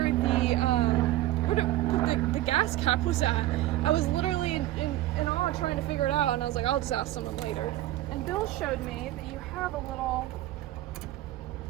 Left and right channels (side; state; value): left; quieter; 15.3 dB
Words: the gas cap was at. I was literally in awe trying to figure it out, and I was like, I'll just ask someone later. And Bill showed me that you have a little